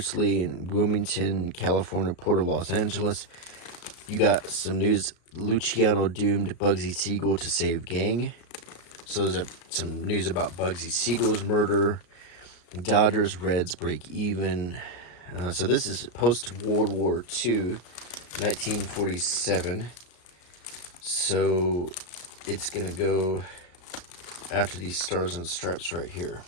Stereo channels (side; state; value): right; late; 34 ms